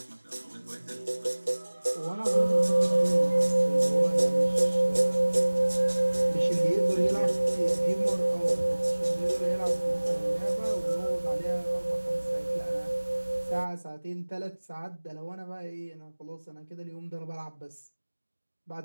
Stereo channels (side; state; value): both; inverted; correlation -1.00